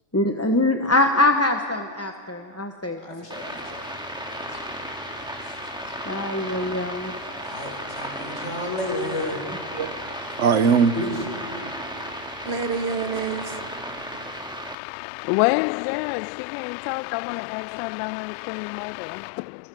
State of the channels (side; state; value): right; drops out; at 14.8 s